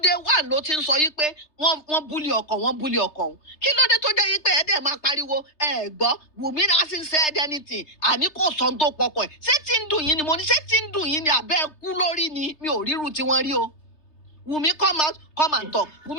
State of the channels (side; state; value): right; late; 3.3 ms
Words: day one ló ti ń sọ yí pé wọ́n búlì ọkọ òun kí ló dé tó jẹ́ yí pé ẹ dẹ̀ máa pariwo ẹ gbọ́ Wùmí náà sì ń said anything àní kò sọ tó pọkọ ẹ̀ ṣé tí ń dùn yín ni mo ní ṣé tí ń dùn yín ni àbẹ́ kú lórí ni mi ò ríru tí wọ́n rí o Wùmí come and talk